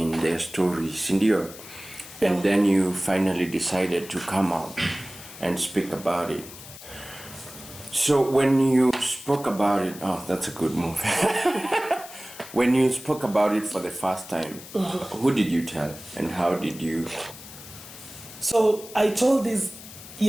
their stories, and then you finally decided to come out and speak about it. So when you spoke about it, that's a good move. When you spoke about it for the first time, who did you tell and how did you? So I told these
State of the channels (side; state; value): left; noise; hiss, 16 dB below the sound